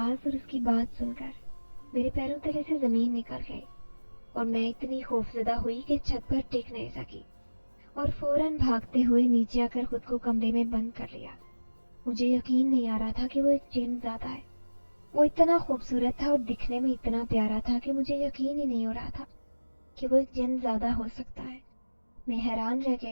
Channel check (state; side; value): inverted; both; correlation -1.00